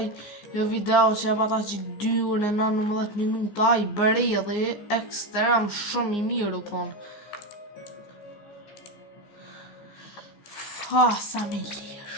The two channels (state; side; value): late; right; 14 ms